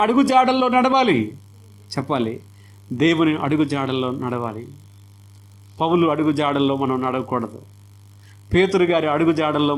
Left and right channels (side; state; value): both; identical; correlation 1.00